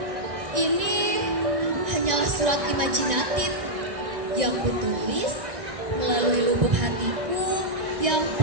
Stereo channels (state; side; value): late; left; 1.6 ms